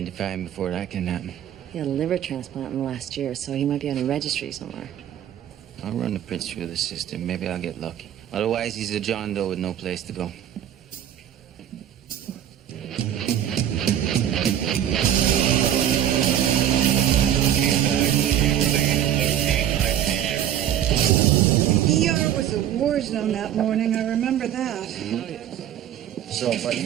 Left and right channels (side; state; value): left; quieter; 10.7 dB